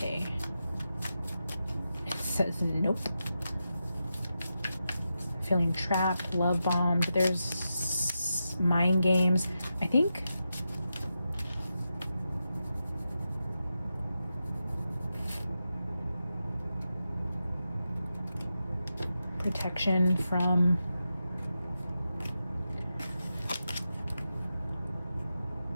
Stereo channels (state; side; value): inverted; both; correlation -0.89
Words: says nope. Feeling trapped, love bombed. There's mind games. I think protection from